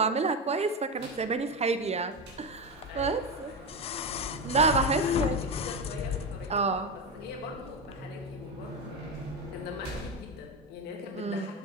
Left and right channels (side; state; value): both; normal; correlation 0.15